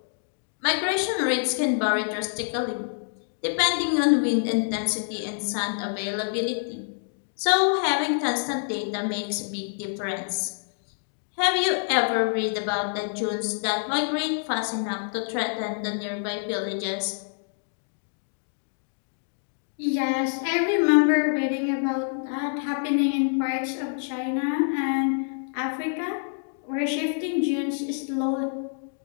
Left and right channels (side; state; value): right; silent; digital silence